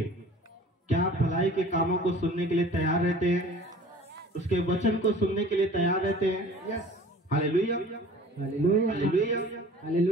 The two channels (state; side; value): normal; both; correlation 0.46